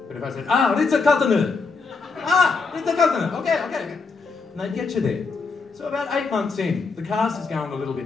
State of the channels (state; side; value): quieter; right; 4.5 dB